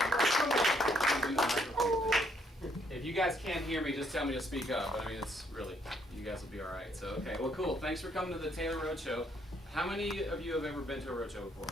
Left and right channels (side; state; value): both; normal; correlation 0.70